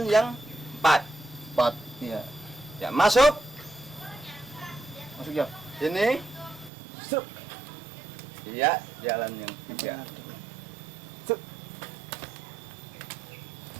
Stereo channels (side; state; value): left; drops out; at 6.7 s